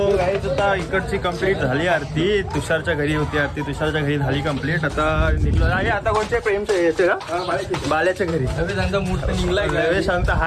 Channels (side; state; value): both; identical; correlation 1.00